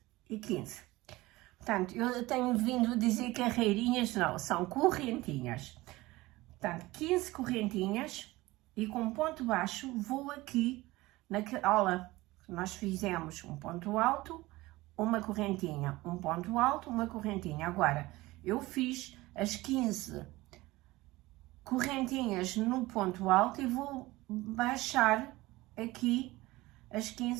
e 15. Portanto, eu tenho vindo a dizer carreirinhas, não, são correntinhas. Portanto, 15 correntinhas e com ponto baixo vou aqui naquela que nós fizemos um ponto alto, uma correntinha, um ponto alto, uma correntinha. Agora, eu fiz as 15 correntinhas no ponto alto e vou baixar aqui as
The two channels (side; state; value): left; quieter; 19.6 dB